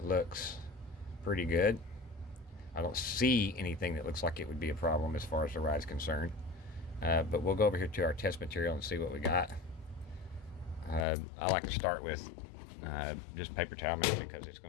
looks pretty good. I don't see anything that looks like it would be a problem as far as the ride's concerned. But we'll go over here to our test material and see what we got. I like to start with just paper towel mix because it's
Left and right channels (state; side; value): drops out; right; at 11.1 s